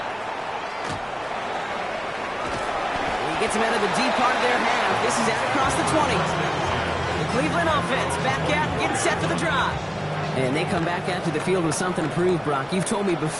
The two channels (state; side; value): identical; both; correlation 1.00